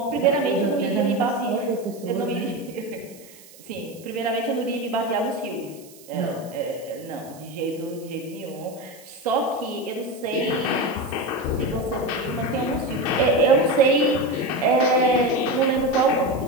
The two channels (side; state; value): right; noise; hiss, 22 dB below the sound